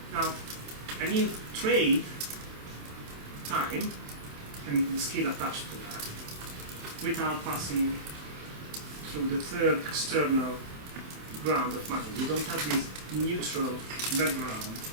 Now, and you trade time and the skill attached to that without passing through the third external ground of money. You don't have this neutral background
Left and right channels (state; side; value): late; left; 27 ms